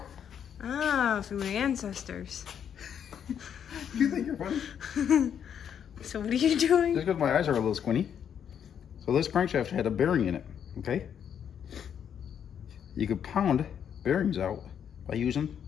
Ah, from my ancestors. You think you're funny? So what are you doing? Just because my eyes are a little squinty. So this crankshaft had a bearing in it, okay? You could pound bearings out by using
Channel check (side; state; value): right; quieter; 8.5 dB